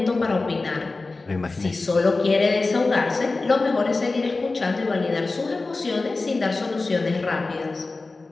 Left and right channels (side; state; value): right; quieter; 3.5 dB